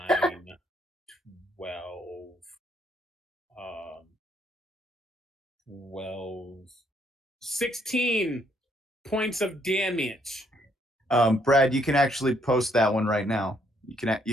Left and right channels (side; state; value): both; normal; correlation 0.70